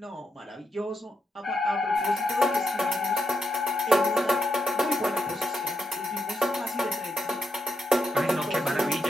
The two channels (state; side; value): normal; both; correlation 0.83